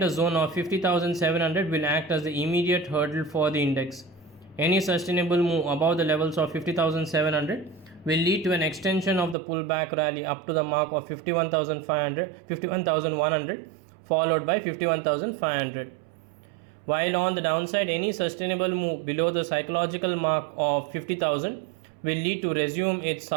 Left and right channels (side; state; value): left; drops out; at 9.3 s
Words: zone of 50,700 will act as the immediate hurdle for the index. Any sustainable move above the levels of 50,700 will lead to an extension of the pullback rally up to the mark of 51,100, followed by 51,500. While on the downside, any sustainable move below the psychological mark of 50,000 will lead to resume its